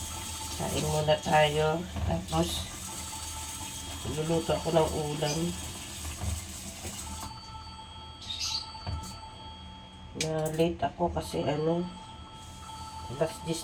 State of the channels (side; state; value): both; identical; correlation 1.00